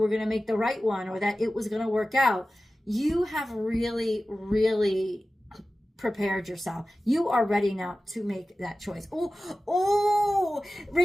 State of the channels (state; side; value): normal; both; correlation 0.95